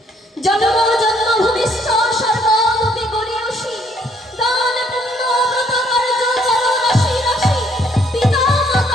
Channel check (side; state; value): both; normal; correlation 0.66